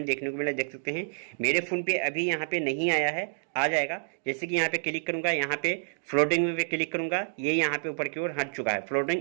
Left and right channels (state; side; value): silent; left; digital silence